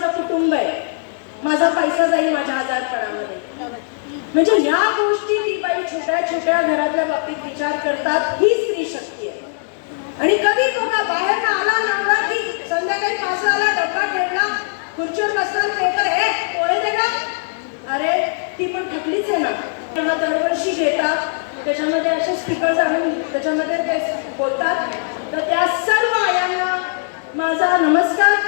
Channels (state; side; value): silent; right; digital silence